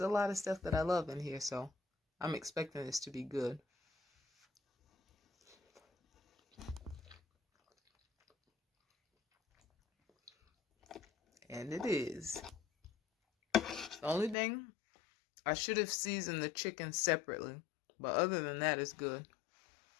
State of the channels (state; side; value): drops out; right; at 14.4 s